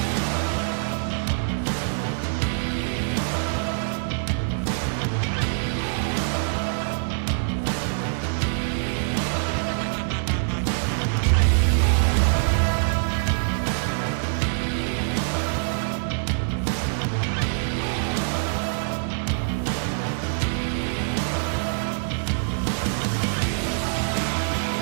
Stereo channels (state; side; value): silent; left; digital silence